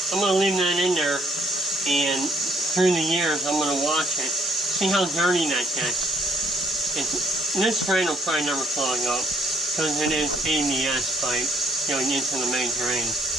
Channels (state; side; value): normal; both; correlation 0.67